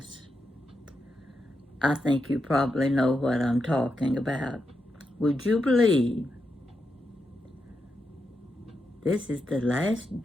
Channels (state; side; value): normal; both; correlation 0.85